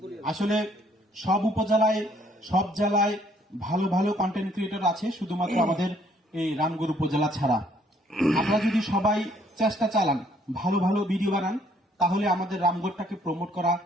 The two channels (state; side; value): normal; both; correlation 0.64